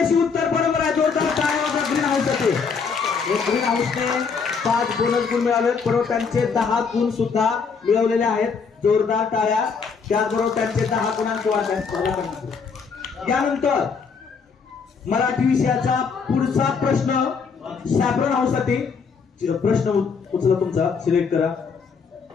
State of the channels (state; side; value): quieter; right; 5.6 dB